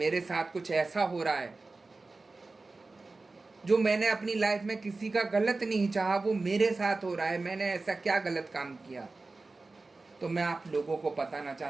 साथ कुछ ऐसा हो रहा है जो मैंने अपनी लाइफ में किसी का गलत नहीं चाहा, वो मेरे साथ हो रहा है, मैंने ऐसा क्या गलत काम किया। तो मैं आप लोगों को बताना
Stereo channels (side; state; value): left; quieter; 3.5 dB